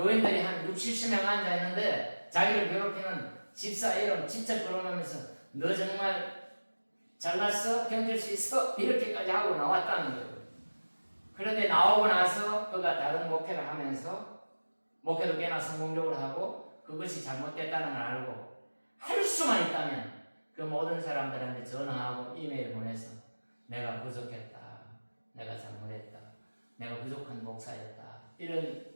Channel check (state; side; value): inverted; both; correlation -1.00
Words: 한 60, 70명 앉아있는데 자기를 괴롭히는 집사 이름 직접 끌어내면서 너 정말 잘났어? 견딜 수 있어? 이렇게까지 하고 나왔다는 거예요. 그런데 나오고 나서 그가 다른 목회를 하면서 목회도 꽤나 성공적으로 하고 그것이 잘못됐다는 걸 알고 할 수만 있다면 그 모든 사람들한테 전화하고 이메일 보내서 내가 부족했다. 내가 잘못했다. 내가 부족한 목사였다. 이런